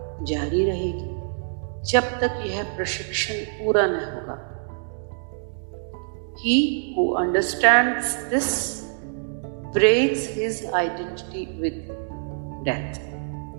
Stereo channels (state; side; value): silent; left; digital silence